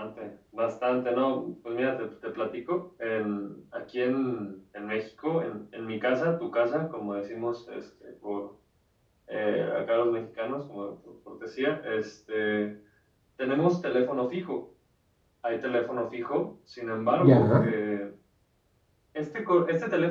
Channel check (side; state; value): both; identical; correlation 1.00